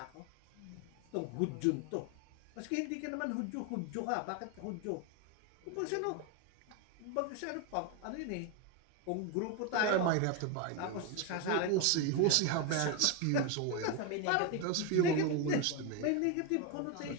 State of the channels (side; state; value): both; different; correlation 0.02